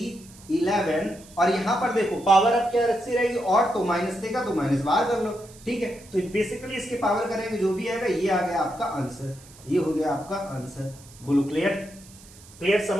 और यहां पर देखो पावर अब क्या रस्सी रहेगी, और तो माइनस देगा तो माइनस बाहर कर लो, ठीक है। तो बेसिकली इसके पावर करेंगे जो भी आएगा, ये आ गया आपका आंसर, ये हो गया आपका आंसर। बोलो क्लियर, क्लियर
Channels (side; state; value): right; noise; hiss, 22 dB below the sound